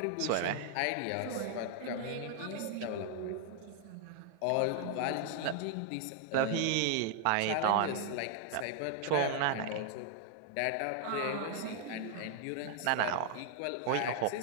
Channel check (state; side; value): different; both; correlation 0.00